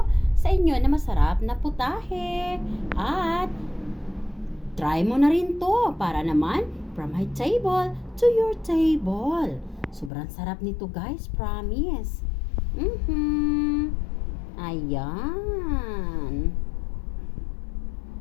sa inyo na masarap na putahe. At, try mo na rin to para naman from my table to your table. Sobrang sarap nito guys, promise. Ayan.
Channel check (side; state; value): right; drops out; at 10.1 s